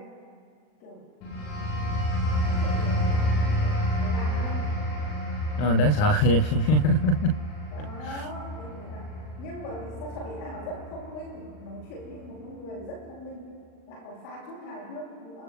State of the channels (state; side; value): late; right; 39 ms